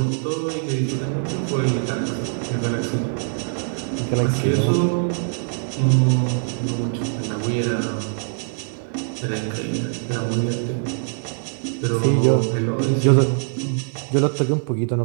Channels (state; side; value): silent; left; digital silence